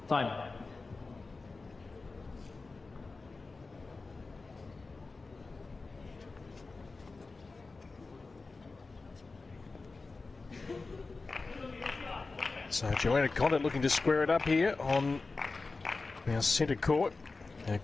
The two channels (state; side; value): quieter; right; 3.8 dB